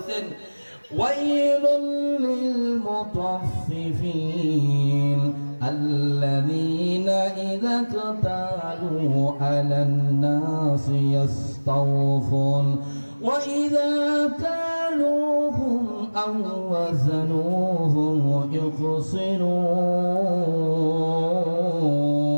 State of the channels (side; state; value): both; inverted; correlation -1.00